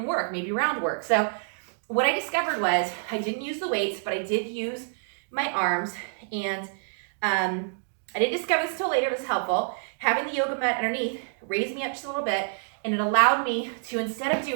work, maybe round work. So what I discovered was I didn't use the weights, but I did use my arms, and I didn't discover this until later. It was helpful. Having the yoga mat underneath raised me up just a little bit, and it allowed me to, instead of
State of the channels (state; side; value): silent; left; digital silence